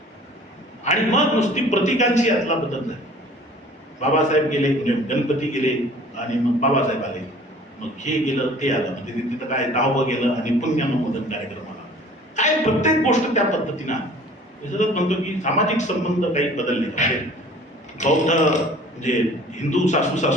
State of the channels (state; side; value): normal; both; correlation 0.49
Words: आणि मग नुसती प्रतीकांची यातला बदल झाला. बाबासाहेब गेले, गणपती गेले आणि मग बाबासाहेब आले, मग हे गेलं ते आलं, म्हणजे तिथं काय दहावं गेलं आणि पुण्यानुमोदन कार्यक्रम आला. काय प्रत्येक गोष्ट त्या पद्धतीनं म्हणतो की सामाजिक संबंध काही बदलले. म्हणजे बौद्ध म्हणजे हिंदू सासू